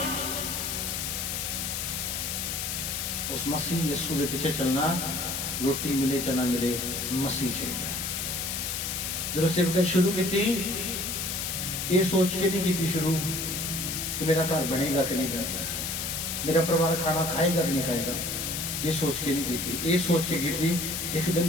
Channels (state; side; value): noise; left; hiss, 2 dB below the sound